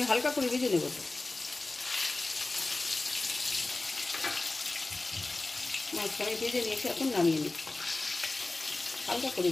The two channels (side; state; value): right; quieter; 3.1 dB